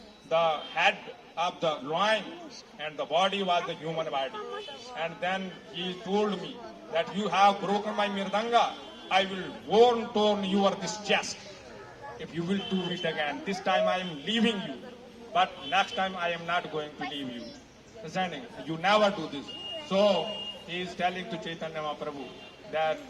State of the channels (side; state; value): both; identical; correlation 1.00